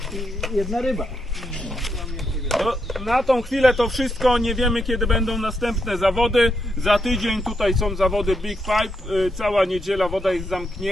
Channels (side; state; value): both; normal; correlation 0.81